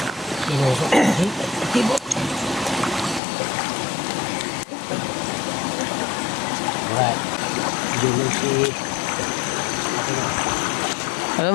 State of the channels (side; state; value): right; drops out; at 3.2 s